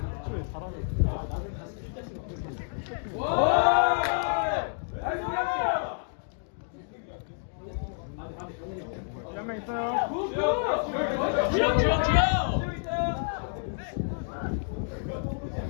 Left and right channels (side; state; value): right; silent; digital silence